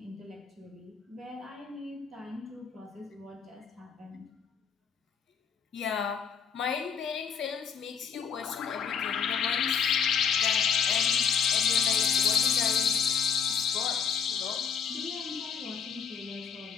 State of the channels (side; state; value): right; quieter; 7.0 dB